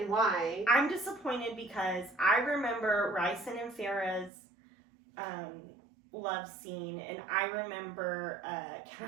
why. I'm disappointed because I remember Ryson and Farah's love scene, and I remember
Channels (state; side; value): drops out; left; at 4.3 s